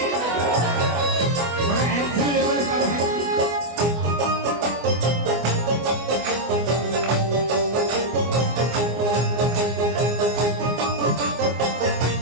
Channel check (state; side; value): late; left; 24 ms